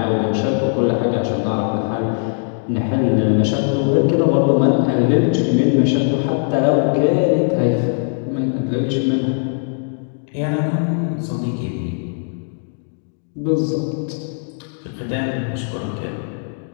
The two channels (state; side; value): silent; right; 66 dB below the other